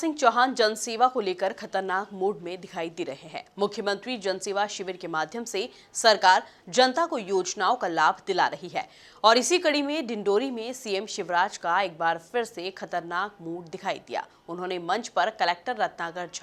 Chauhan जनसेवा को लेकर खतरनाक मूड में दिखाई दे रहे हैं। मुख्यमंत्री जनसेवा शिविर के माध्यम से सरकार जनता को योजनाओं का लाभ दिला रही है और इसी कड़ी में डिंडोरी में सीएम शिवराज का एक बार फिर से खतरनाक मूड दिखाई दिया। उन्होंने मंच पर कलेक्टर रत्नाकर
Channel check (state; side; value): identical; both; correlation 1.00